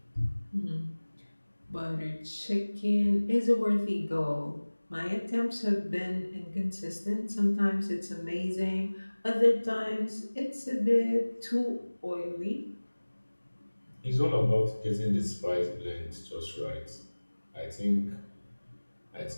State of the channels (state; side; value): inverted; both; correlation -1.00